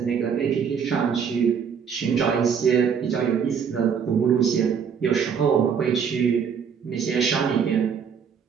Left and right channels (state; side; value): quieter; left; 7.0 dB